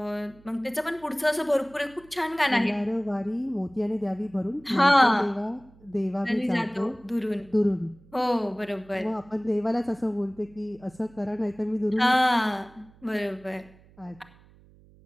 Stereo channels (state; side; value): noise; right; hum, 26 dB below the sound